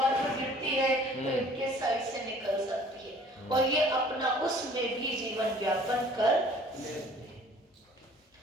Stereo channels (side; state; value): both; normal; correlation 0.52